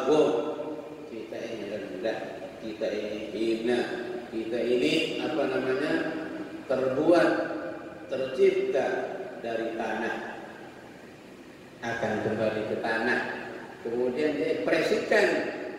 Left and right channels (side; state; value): both; identical; correlation 1.00